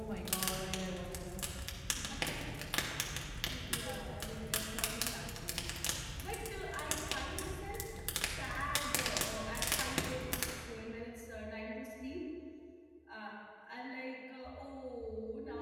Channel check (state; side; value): identical; both; correlation 1.00